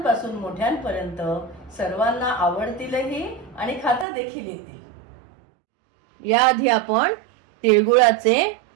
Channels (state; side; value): drops out; left; at 4.0 s